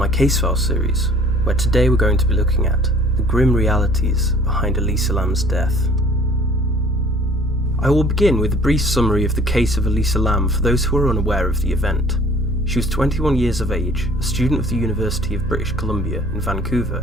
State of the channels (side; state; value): both; normal; correlation 0.54